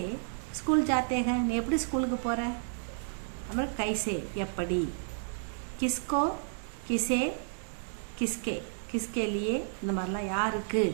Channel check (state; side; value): silent; left; 57 dB below the other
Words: स्कूल जाते हैं நீ எப்படி ஸ்கூலுக்கு போற, அப்புறம் कैसे எப்படி, किसको किसे किसके किसके लिए இந்த மாதிரிலாம் யாருக்கு